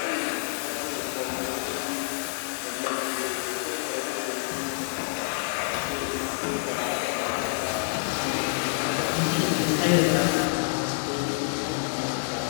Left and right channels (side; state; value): right; silent; digital silence